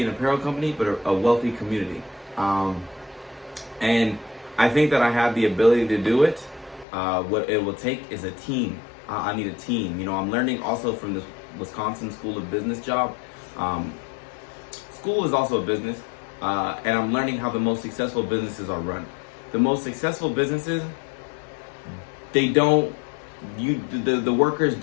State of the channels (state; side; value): drops out; right; at 6.9 s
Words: an apparel company, but a wealthy community. And I think that I have the ability to do it. What it will take is a team. I need a team. I'm learning also from this Wisconsin School of Business job. School is also a business. And I'm learning how the most successful businesses are run. The most successful businesses, the workers